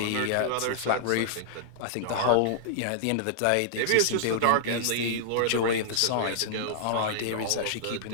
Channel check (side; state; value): both; different; correlation -0.02